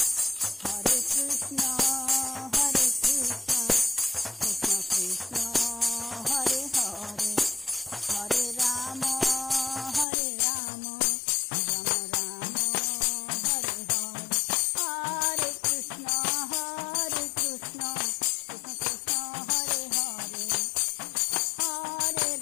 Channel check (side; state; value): right; drops out; at 10.1 s